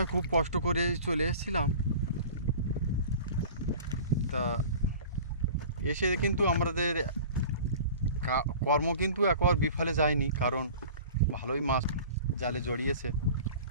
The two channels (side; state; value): both; inverted; correlation -0.41